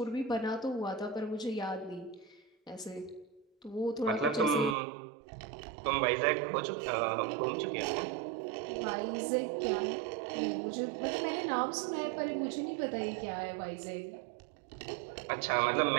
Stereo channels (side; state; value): left; drops out; at 4.8 s